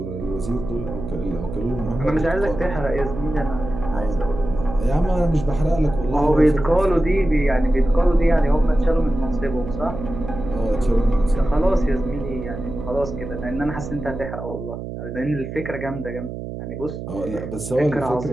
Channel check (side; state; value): right; noise; hum, 8 dB below the sound